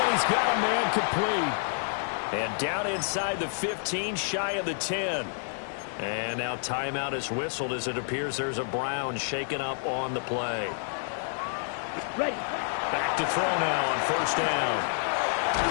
and he's got a man complete. And down inside the 15, shy of the 10. And now timeout is whistled as it appears there's a Brown shaken up on the play. Ready. Back to throw now on 1st down.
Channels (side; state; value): right; silent; digital silence